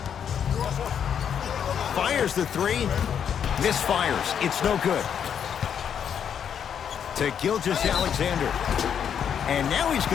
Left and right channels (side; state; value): right; quieter; 8.2 dB